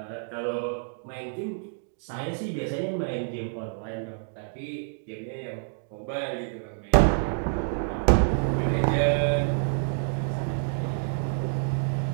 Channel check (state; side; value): silent; left; digital silence